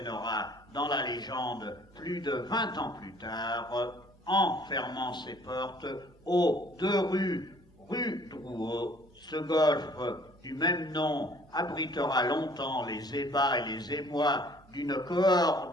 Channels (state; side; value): normal; both; correlation 0.56